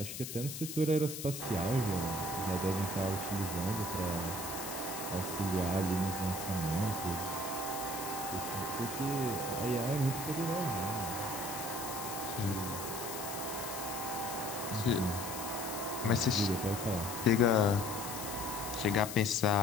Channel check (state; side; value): noise; left; hiss, 7 dB below the sound